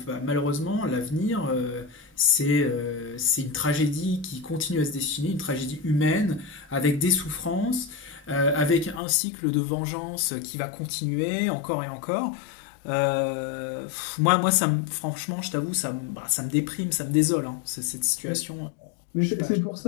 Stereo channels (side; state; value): right; drops out; at 9.0 s